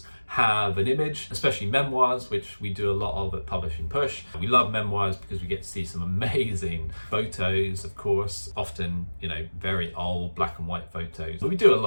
have an image, especially memoirs, which we do a lot of at Publishing Push. We love memoirs because we get to see some amazing photos, of course, often, very old black and white photos. But we do a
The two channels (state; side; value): inverted; both; correlation -1.00